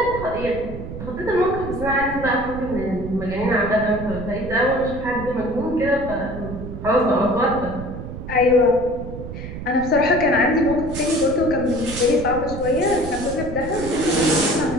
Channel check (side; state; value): right; noise; rumble, 9 dB below the sound